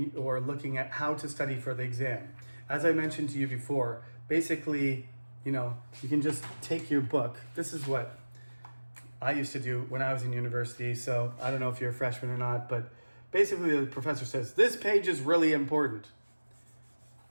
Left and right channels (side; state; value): both; inverted; correlation -1.00